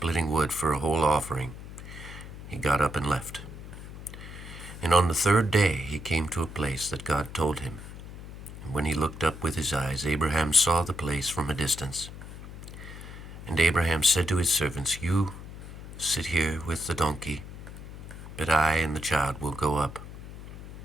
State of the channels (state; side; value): noise; left; hum, 12 dB below the sound